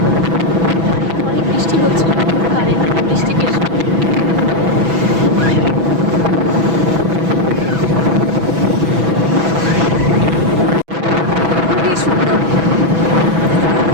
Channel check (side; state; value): left; late; 6.1 ms